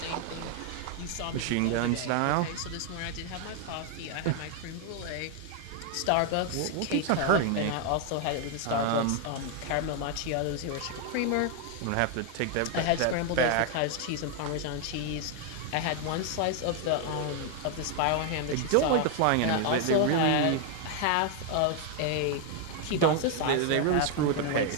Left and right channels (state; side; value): different; both; correlation 0.00